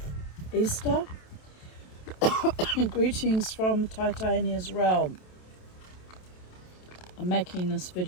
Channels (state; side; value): late; right; 27 ms